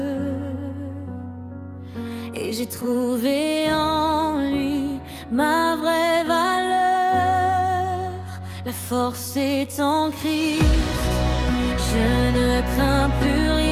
Et j'ai trouvé en lui ma vraie valeur. La force est en Christ, je ne crains plus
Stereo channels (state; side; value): identical; both; correlation 1.00